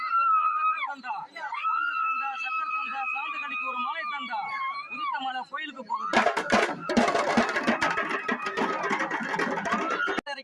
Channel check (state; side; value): identical; both; correlation 1.00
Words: சக்கர் தந்தா சாந்து கடிக்கு ஒரு மாலை தந்தா உதித்த மலை கோயிலுக்கு போகுது.